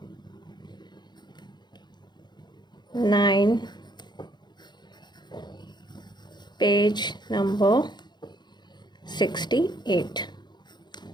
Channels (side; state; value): right; late; 0.21 ms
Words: 9, page number 68,